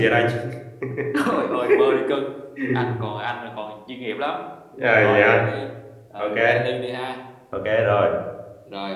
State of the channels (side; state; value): both; identical; correlation 1.00